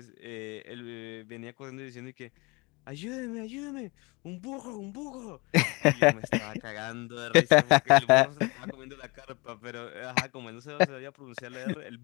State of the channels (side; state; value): right; quieter; 26.7 dB